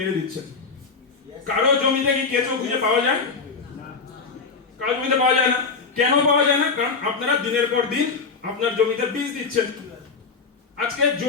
দিচ্ছেন। কারো জমিতে কি কেঁচো খুঁজে পাওয়া যায়? কারো জমিতে পাওয়া যায় না। কেন পাওয়া যায় না? কারণ আপনারা দিনের পর দিন আপনার জমিতে বীজ দিচ্ছেন। আজকে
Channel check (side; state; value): right; quieter; 4.7 dB